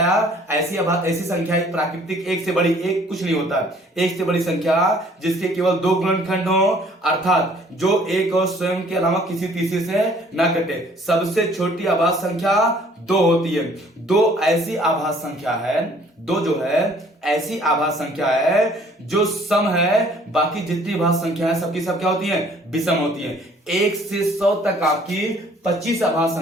ऐसी संख्या प्राकृतिक एक से बड़ी, एक कुछ नहीं होता है, एक से बड़ी संख्या जिसके केवल 2 गुणनखंड हो, अर्थात जो एक और स्वयं के अलावा किसी तीसरे से ना कटे। सबसे छोटी आभास संख्या 2 होती है। 2 ऐसी आभास संख्या है, 2 जो है ऐसी आभास संख्या है जो सम है, बाकी जितनी आभास संख्या है सबकी सब क्या होती है, विषम होती है। 1 से 100 तक आपकी 25 आभास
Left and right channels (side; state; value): both; normal; correlation 0.57